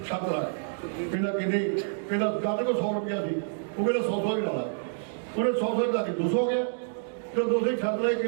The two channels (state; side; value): silent; left; digital silence